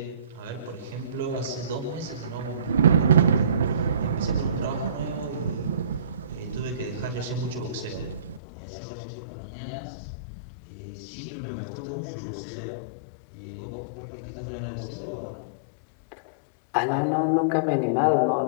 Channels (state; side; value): drops out; right; at 8.4 s